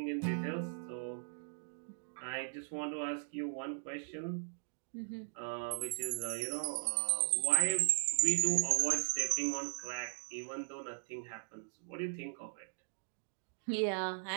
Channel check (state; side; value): silent; left; digital silence